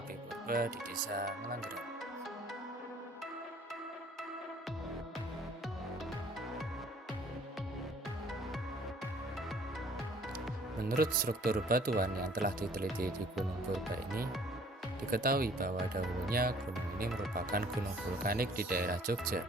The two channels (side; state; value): both; normal; correlation 0.56